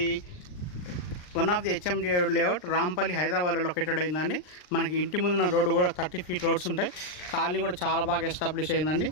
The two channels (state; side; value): late; right; 39 ms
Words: one of the HMD layout Rampalli హైదరాబాద్లో లొకేటెడ్ అయిందండి. మనకి ఇంటి ముందున్న రోడ్డు కూడా 30 ఫీట్ రోడ్స్ ఉంటాయి. కాలనీ కూడా చాలా బాగా ఎస్టాబ్లిష్ అయిందండి.